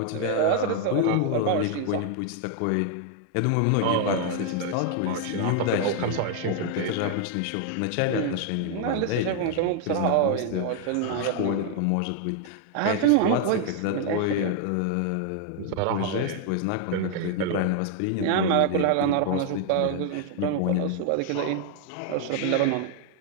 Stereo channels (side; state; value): both; different; correlation 0.00